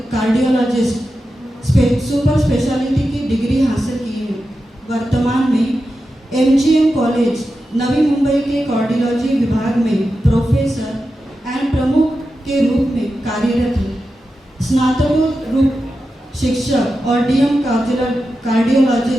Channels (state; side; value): normal; both; correlation 0.91